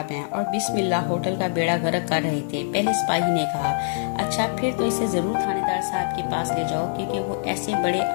हैं और बिस्मिल्लाह होटल का बेड़ा गर्क कर रहे थे, पहले सिपाही ने कहा। अच्छा फिर तो इसे जरूर थानेदार साहब के पास ले जाओ क्योंकि वो ऐसे बड़े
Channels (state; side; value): silent; right; digital silence